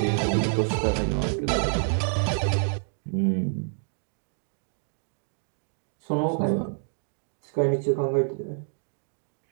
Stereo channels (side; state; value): left; silent; digital silence